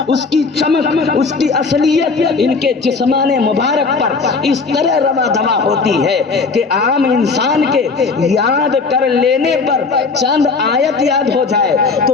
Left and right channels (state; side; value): quieter; right; 4.4 dB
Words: اس کی چمک، اس کی اصلیت ان کے جسمان مبارک پر اس طرح روا دوا ہوتی ہے کہ عام انسان کے یاد کر لینے پر چند آیت یاد ہو جائے تو